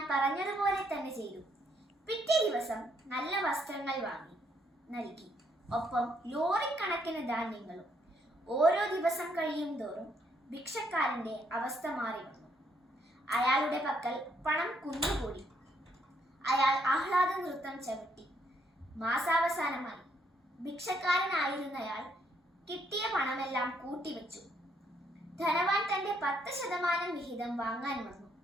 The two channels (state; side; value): normal; both; correlation 0.72